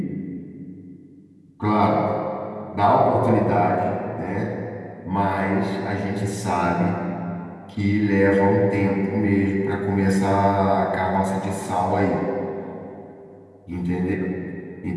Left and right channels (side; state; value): both; identical; correlation 1.00